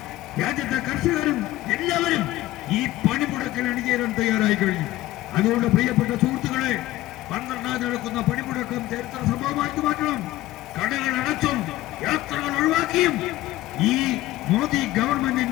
രാജ്യത്തെ കർഷകരും എല്ലാവരും ഈ പണിമുടക്കിൽ അണിചേരാൻ തയ്യാറായി കഴിഞ്ഞു. അതുകൊണ്ട് പ്രിയപ്പെട്ട സുഹൃത്തുക്കളെ, 12 നടക്കുന്ന പണിമുടക്കം ചരിത്ര സംഭവമാക്കി മാറ്റണം. കടകൾ അടച്ചും യാത്രകൾ ഒഴിവാക്കിയും ഈ മോദി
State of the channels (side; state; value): right; quieter; 16.3 dB